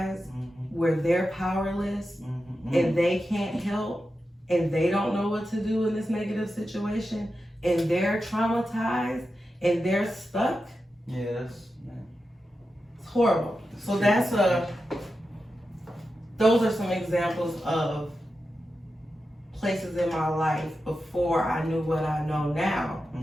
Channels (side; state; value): both; normal; correlation 0.90